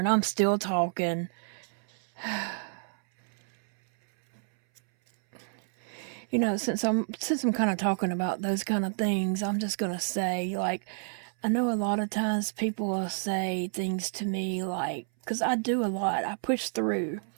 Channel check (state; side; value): silent; left; 58 dB below the other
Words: I'm still talking. Since I'm kind of talking about those kind of things, I'm just going to say, like, I know a lot of times people will say things to me like, because I do a lot. I push through.